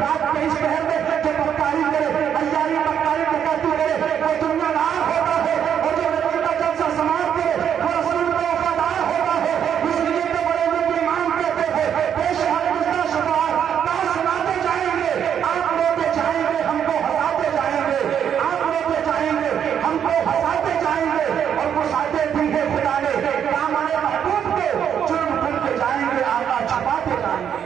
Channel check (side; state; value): left; quieter; 8.7 dB